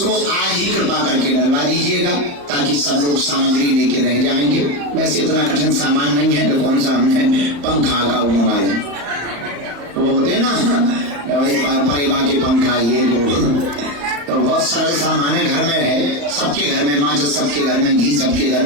आज ही कृपा करके डलवा दीजिएगा ताकि सब लोग सामग्री लेके रह जाएंगे। वैसे इतना कठिन सामान नहीं है कि कौन सा हमने पंखा का मोबाइल वो होते ना परिवार के पंखा ये वो, तो बहुत सरल सामान है, घर में है, सबके घर में माचिस, सबके घर में घी, सबके घर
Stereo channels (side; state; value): left; late; 34 ms